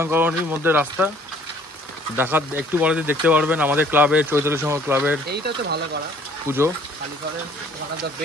কলোনির মধ্যে রাস্তা দেখা, একটু পরে দেখতে পারবেন আমাদের ক্লাবের, চৈতালি সংঘ ক্লাবের পুজো।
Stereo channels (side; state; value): both; normal; correlation 0.57